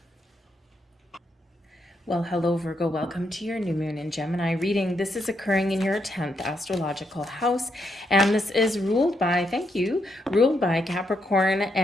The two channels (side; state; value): both; normal; correlation 0.79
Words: Well, hello, Virgo. Welcome to your new moon in Gemini reading. This is occurring in your 10th astrological house, and this is ruled by, ruled by Capricorn